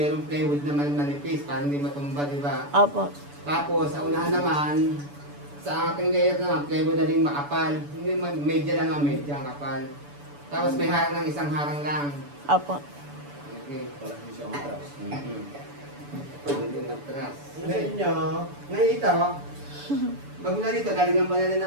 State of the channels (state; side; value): late; left; 6.9 ms